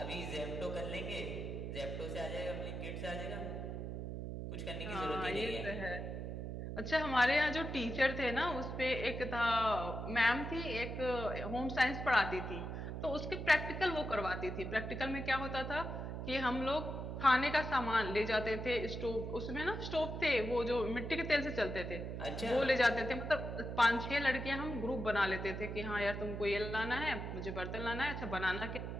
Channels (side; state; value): right; noise; hum, 5 dB below the sound